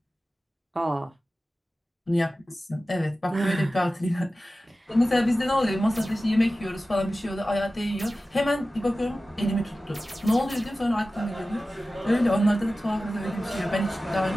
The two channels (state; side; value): normal; both; correlation 0.95